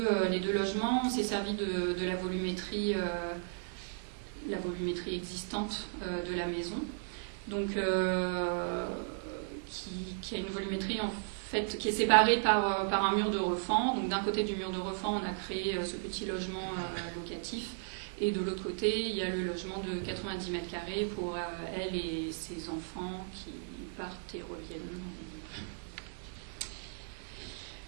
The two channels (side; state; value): left; silent; digital silence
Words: logements, on s'est servi de la volumétrie existante de la maison. Donc qui a une volumétrie en fait qui est séparée par un mur de refend. Donc d'un côté du mur de refend, on a créé ce petit logement locatif, et de l'autre côté, il y a le logement de 90 mètres carrés pour elle et ses enfants qui partent et reviennent.